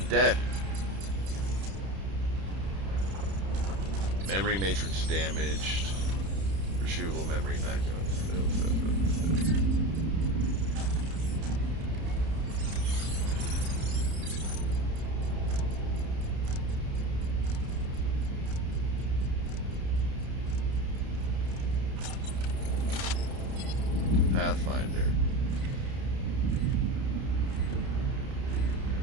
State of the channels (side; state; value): left; late; 31 ms